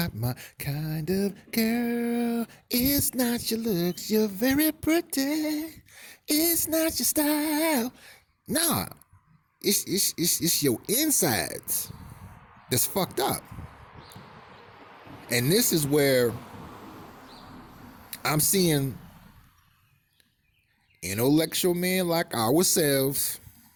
my kind of girl. It's not your looks, you're very pretty. It's not your style. Nah, it's your insides that's fucked up. And this is where I'm seeing intellectual men like ourselves,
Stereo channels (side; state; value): both; identical; correlation 1.00